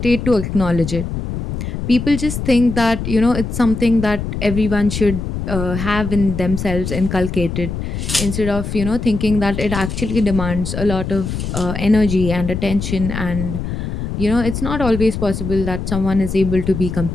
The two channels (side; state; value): left; noise; rumble, 5 dB below the sound